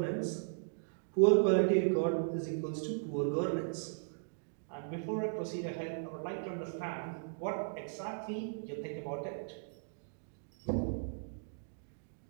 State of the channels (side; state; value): left; silent; digital silence